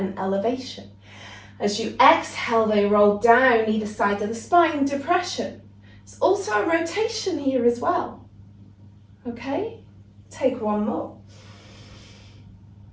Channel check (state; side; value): identical; both; correlation 1.00